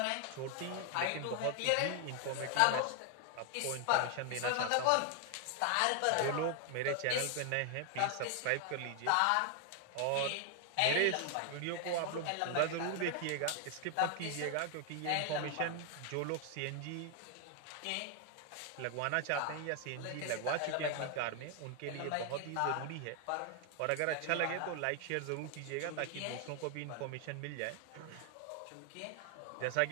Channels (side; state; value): both; different; correlation 0.00